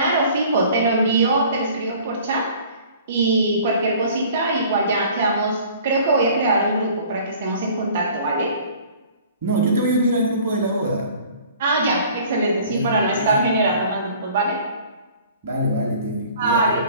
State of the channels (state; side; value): inverted; both; correlation -0.50